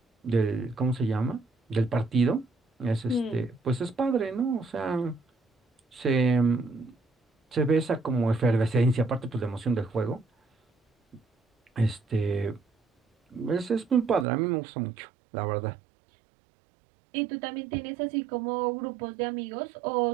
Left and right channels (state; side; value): drops out; left; at 14.2 s